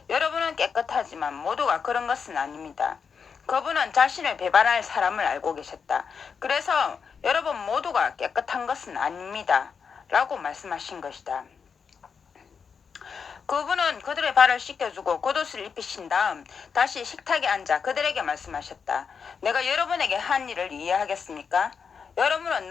여러분은 깨끗하지만 모두가 그런 것은 아닙니다. 그분은 자신을 배반할 사람을 알고 계셨다. 그래서 여러분 모두가 깨끗한 것은 아닙니다. 라고 말씀하신 것이다. 그분은 그들의 발을 씻겨주고 겉옷을 입히신 다음 다시 식탁에 앉아 그들에게 말씀하셨다. 내가 여러분에게 한 일을 이해하겠습니까? 여러분은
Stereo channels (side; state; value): right; quieter; 6.1 dB